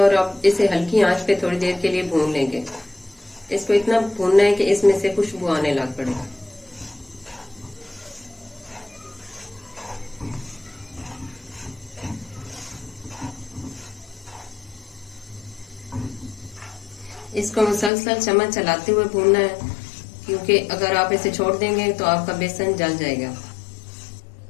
अब इसे हल्की आंच पे थोड़ी देर के लिए भून लेंगे। इसको इतना भूनना है कि इसमें से खुशबू आने लग पड़े। इसको मुसलसल चम्मच चलाते हुए भूनना है, क्योंकि अगर आप इसे छोड़ देंगे तो आपका बेसन जल जाएगा।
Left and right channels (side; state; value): right; drops out; at 17.9 s